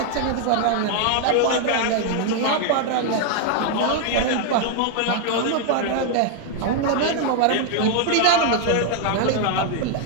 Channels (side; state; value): both; different; correlation 0.00